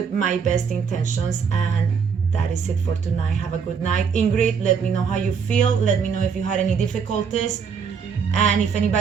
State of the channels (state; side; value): quieter; left; 6.3 dB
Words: my best intentions, and that is it for tonight. Have a good night. Ingrid, let me know how you feel. Let me know if you had any difficulties. And if